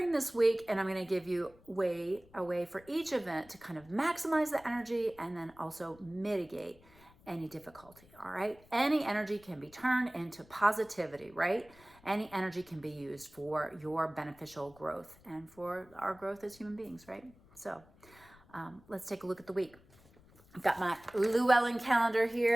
this week, and I'm going to give you a way for each event to kind of maximize the energy and then also mitigate any difficulty. All right, any energy can be turned into positivity, right? Any energy can be used for your beneficial growth and for our growth as human beings, right? So let's take a look at the week. I've got my Llewellyn calendar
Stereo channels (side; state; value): left; noise; rumble, 26 dB below the sound